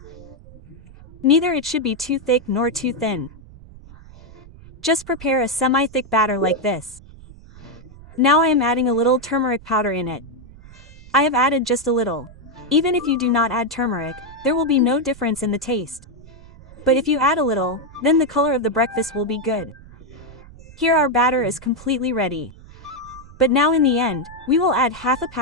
Neither it should be too thick nor too thin. Just prepare a semi-thick batter like this. Now I am adding a little turmeric powder in it. I have added just a little. Even if you do not add turmeric, there will be no difference in the taste. But if you add a little, then the color of the breakfast will be good. Here our batter is completely ready. But now in the end, we will add half a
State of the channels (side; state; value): right; noise; rumble, 20 dB below the sound